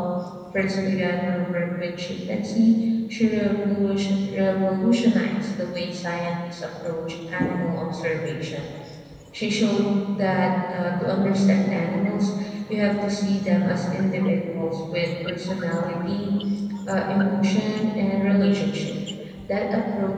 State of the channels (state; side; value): identical; both; correlation 1.00